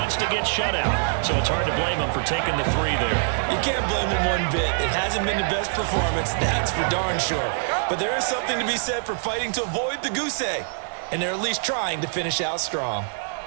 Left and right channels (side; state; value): left; silent; 62 dB below the other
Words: to get shut out, so it's hard to blame them for taking the 3 there. You can't blame them one bit. It hasn't been the best performance, that's for darn sure. But there is something to be said for fighting to avoid the goose egg, and they're at least trying to finish out strong.